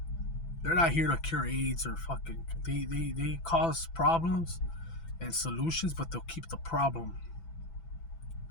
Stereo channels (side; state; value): right; late; 6.0 ms